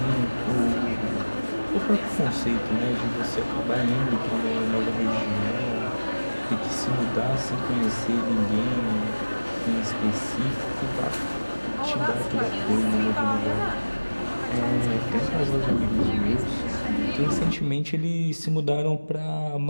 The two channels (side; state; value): both; inverted; correlation -1.00